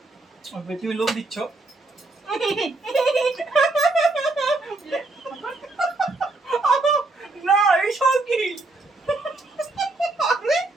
তুমি লোক দিচ্ছ না এইসব কি আরে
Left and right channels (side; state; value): left; quieter; 3.1 dB